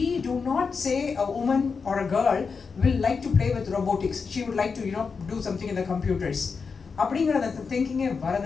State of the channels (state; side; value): quieter; right; 5.2 dB